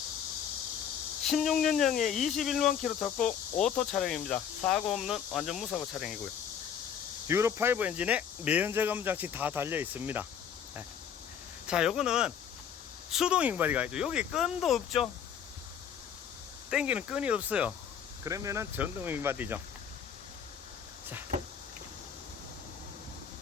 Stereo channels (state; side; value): quieter; right; 8.2 dB